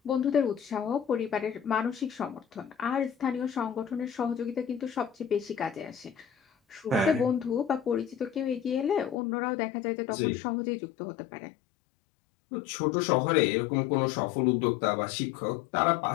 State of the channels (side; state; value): right; drops out; at 9.2 s